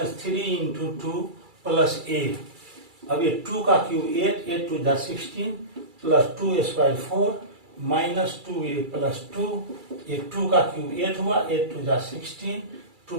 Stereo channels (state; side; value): late; left; 2.3 ms